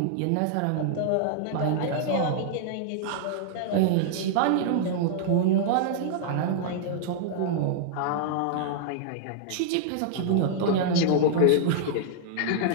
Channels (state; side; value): different; both; correlation -0.01